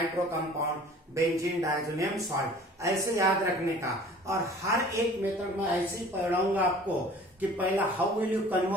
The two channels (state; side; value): normal; both; correlation 0.47